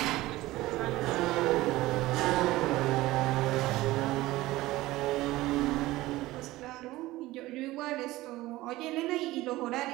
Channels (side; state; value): left; quieter; 17.9 dB